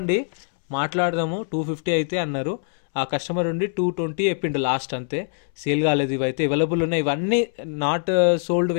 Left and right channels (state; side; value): silent; right; 63 dB below the other